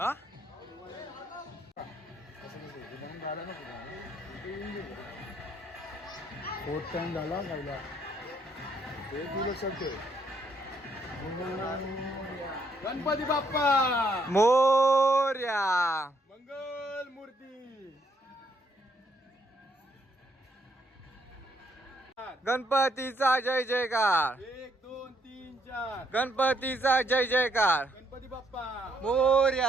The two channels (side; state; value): both; normal; correlation 0.72